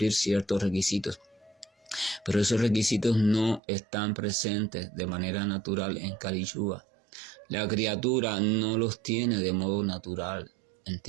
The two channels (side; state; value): left; drops out; at 3.6 s